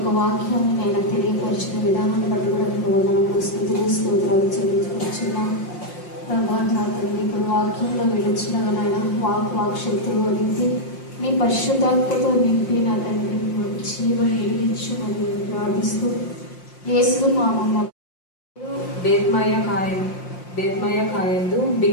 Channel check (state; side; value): late; right; 5.6 ms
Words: వాక్యాన్ని నేను తెలియపరిచిన విధానాన్ని బట్టి కూడా నీకు వందనాలు స్తోత్రాలు చెల్లించుకుంటున్నాం ప్రభా. నా తండ్రి ఇప్పుడు వాక్యంలో విడిచిన నాయన వాక్శక్తులు వదిలించి నీ పరిశుద్ధాత్మతో నింపి నా తండ్రి జీవం వెలిగించు మరియు ప్రార్థిస్తూ యేసు నామమున. బేత్మయ కాయందు